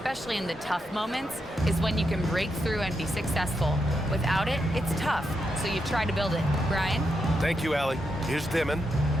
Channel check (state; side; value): normal; both; correlation 0.83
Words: in the tough moments, is when you can break through and be successful. Without it, it's tough, so you try to build it." Brian? Thank you, Allie. Here's Demon,